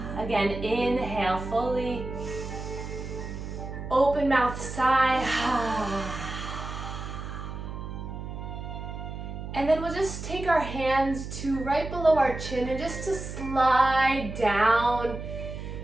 Again, inhale fully. Open mouth, sigh. And then we'll just take our hands to right below our chin and just to slide down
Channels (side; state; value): right; noise; hum, 8 dB below the sound